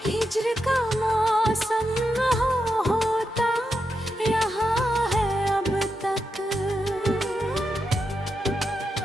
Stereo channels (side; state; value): both; normal; correlation 0.86